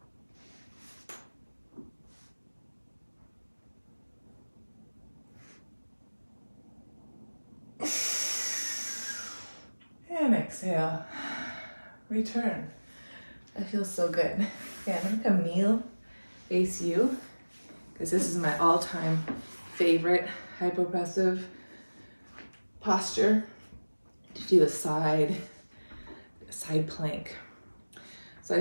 And exhale, return. That feels so good. Okay, I'm gonna come kneel, face you, because this is my all-time favorite hypopressive posture to do a side plank. So I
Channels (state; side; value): inverted; both; correlation -1.00